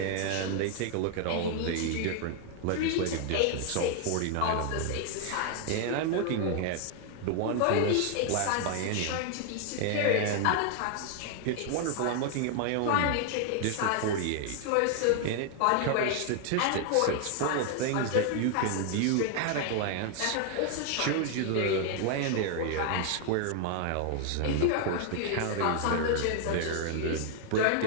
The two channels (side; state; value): both; different; correlation 0.00